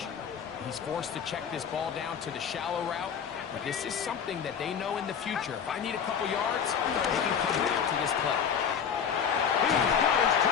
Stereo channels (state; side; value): quieter; right; 7.5 dB